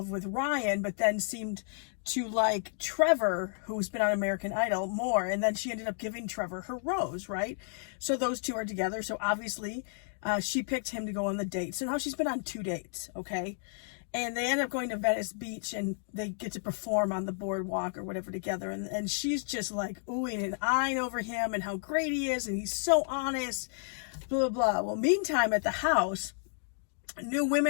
with Ryan, but then seemed to like Trevor, who's been on American Idol, more, and then she ended up giving Trevor her rose, right? So those two are together, so obviously she picked him to go on the date. So now she's been on 2 dates, okay? And they end up going to Venice Beach, and they get to perform on the boardwalk or whatever together. And she's just like oohing and eyeing over him and how great he is, and he's so honest, blah, blah, blah. Well, meantime, at the house, new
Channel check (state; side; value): silent; right; digital silence